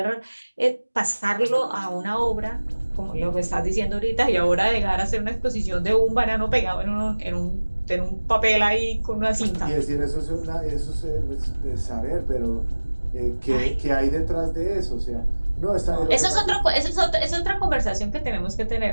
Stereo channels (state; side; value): inverted; both; correlation -1.00